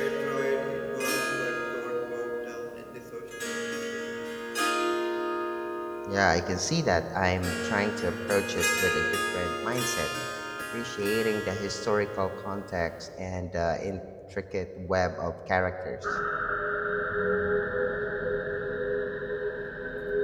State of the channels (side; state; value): both; identical; correlation 1.00